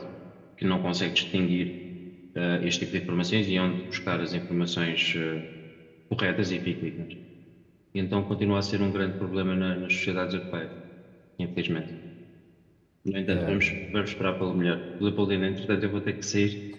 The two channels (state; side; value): identical; both; correlation 1.00